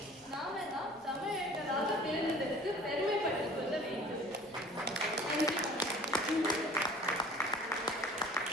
நாம தான் தமிழர்களாக பிறந்ததற்கு பெருமைப்பட்டுக் கொள்ள வேண்டும்.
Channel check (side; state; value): both; normal; correlation 0.47